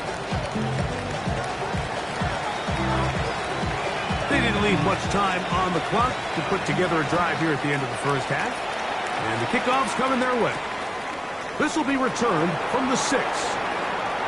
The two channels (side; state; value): both; identical; correlation 1.00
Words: They didn't leave much time on the clock to put together a drive here at the end of the first half. And the kickoff's coming their way. This will be returned from the 6.